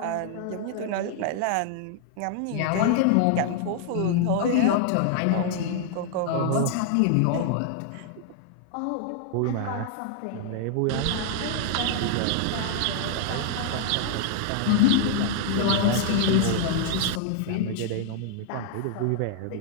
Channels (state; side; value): different; both; correlation -0.01